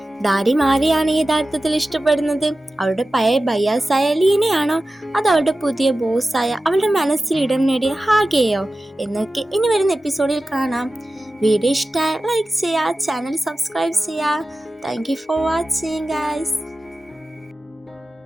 ദാരിം ആരെയാണ് യഥാർത്ഥത്തിൽ ഇഷ്ടപ്പെടുന്നത്? അവളുടെ പഴയ ബയ്യാസായ ലീനയാണോ, അത് അവളുടെ പുതിയ ബോസായ അവളുടെ മനസ്സിൽ ഇടം നേടിയ ഹാഗയെയോ എന്നൊക്കെ ഇനി വരുന്ന എപ്പിസോഡിൽ കാണാം. വീഡിയോ ഇഷ്ടമായി ലൈക്ക് ചെയ്യുക, ചാനൽ സബ്സ്ക്രൈബ് ചെയ്യുക. Thank you for watching guys.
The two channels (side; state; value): both; normal; correlation 0.95